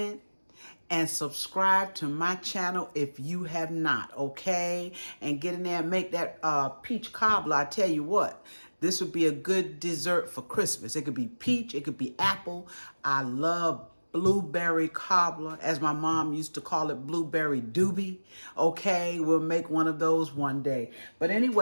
and subscribe to my channel if you have not, okay? And get in there and make that peach cobbler. I tell you what, this would be a good dessert for Christmas. It could be peach, it could be apple. I love blueberry cobbler, as my mom used to call it, blueberry doobie. Okay, we'll make one of those one day. But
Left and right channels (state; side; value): inverted; both; correlation -1.00